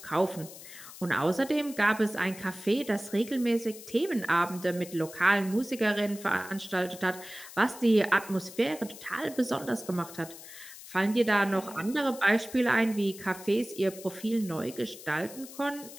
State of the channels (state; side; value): noise; left; hiss, 15 dB below the sound